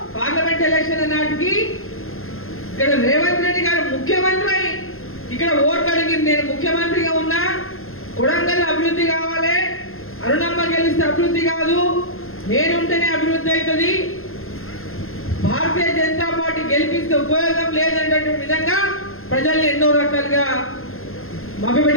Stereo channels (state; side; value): late; right; 0.61 ms